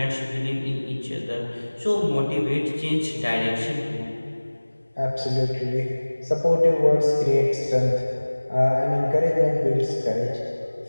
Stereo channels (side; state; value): both; inverted; correlation -1.00